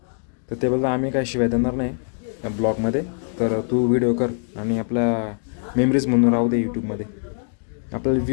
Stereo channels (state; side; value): silent; right; 64 dB below the other